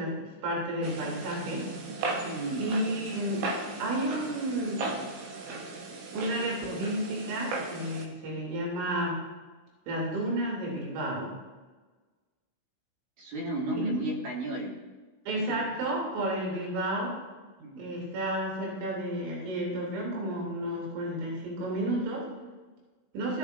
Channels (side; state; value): left; late; 16 ms